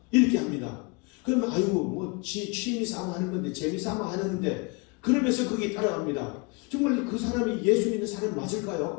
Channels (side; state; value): right; quieter; 29.5 dB